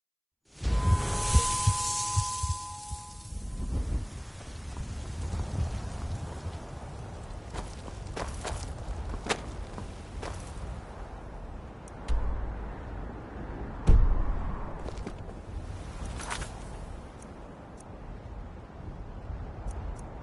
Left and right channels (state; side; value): identical; both; correlation 1.00